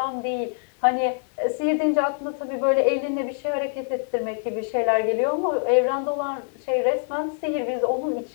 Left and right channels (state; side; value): silent; right; 62 dB below the other